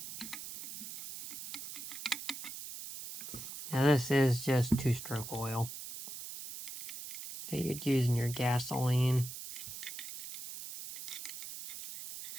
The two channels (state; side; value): noise; right; hiss, 9 dB below the sound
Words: Now this is just 2-stroke oil that you'd use in your gasoline.